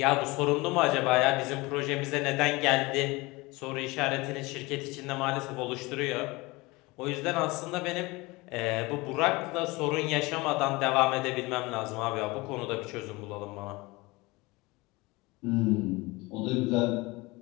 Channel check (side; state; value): right; quieter; 23.1 dB